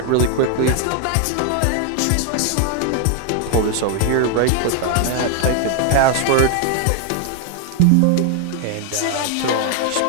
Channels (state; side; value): different; both; correlation 0.01